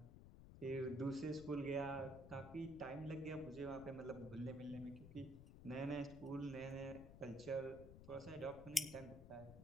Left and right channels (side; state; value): left; noise; rumble, 13 dB below the sound